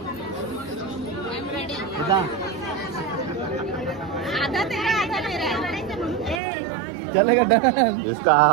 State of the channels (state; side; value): drops out; left; at 6.4 s